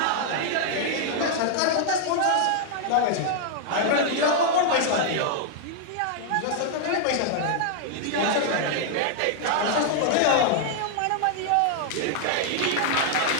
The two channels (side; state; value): both; different; correlation -0.01